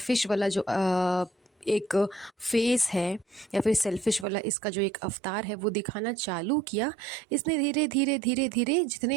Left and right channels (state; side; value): drops out; left; at 4.2 s